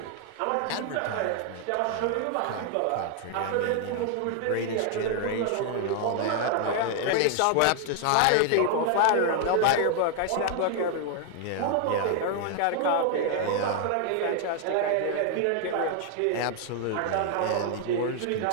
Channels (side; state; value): both; different; correlation 0.00